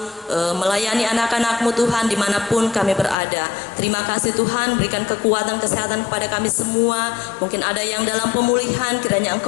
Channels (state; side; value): drops out; right; at 3.2 s